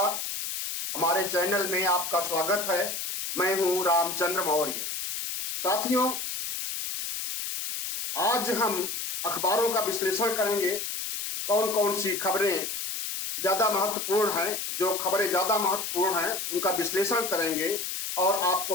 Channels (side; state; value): left; noise; hiss, 4 dB below the sound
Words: हमारे चैनल में आपका स्वागत है। मैं हूं रामचंद्र मौर्य। साथियों, आज हम अखबारों का विश्लेषण करेंगे। कौन कौन सी खबरें ज्यादा महत्वपूर्ण हैं, जो खबरें ज्यादा महत्वपूर्ण हैं उनका विश्लेषण करेंगे और आपको